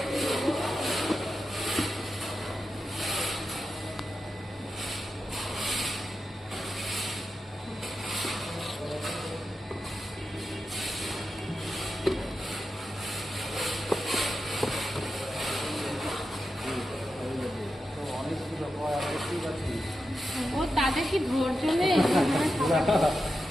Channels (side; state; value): both; normal; correlation 0.89